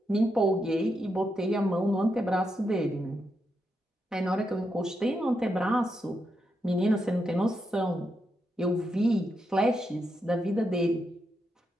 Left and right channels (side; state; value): both; normal; correlation 0.83